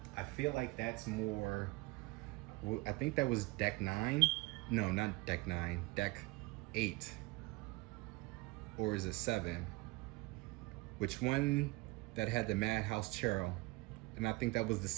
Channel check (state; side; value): quieter; left; 23.0 dB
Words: I feel like that's more, I think that was deck 9. No, not deck 9, deck 8. or is it 7? Which one that had the Madhouse Tarot? And I think that was the